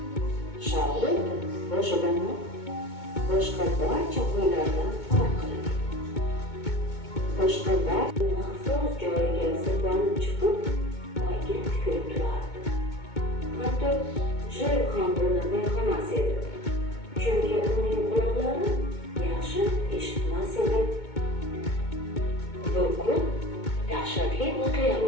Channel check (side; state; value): right; late; 2.2 ms